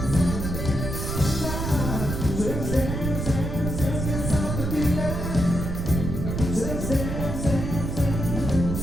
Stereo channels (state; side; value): noise; right; rumble, 3 dB below the sound